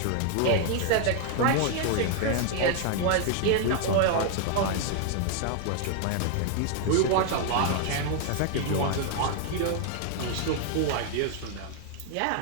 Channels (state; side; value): different; both; correlation 0.00